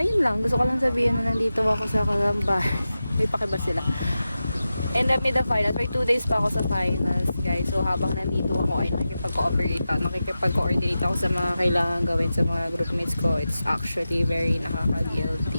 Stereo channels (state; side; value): inverted; both; correlation -0.93